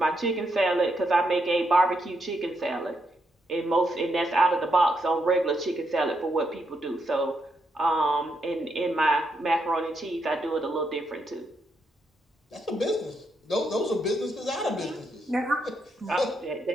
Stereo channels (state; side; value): normal; both; correlation 0.79